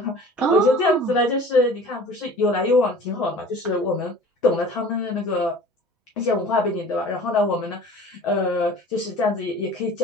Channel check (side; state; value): both; normal; correlation 0.44